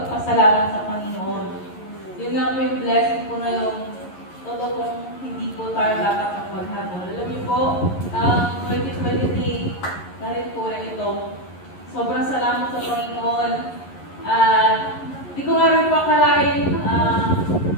sa Panginoon. Yun nga po yung blessing po na yung totoo pong hindi po tayo dapat ang maghabol. Alam niyo po, 2023 na rin po na ito. Sobrang salamat sa Panginoon. Di ko nga rin po akalain,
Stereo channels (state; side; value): late; right; 11 ms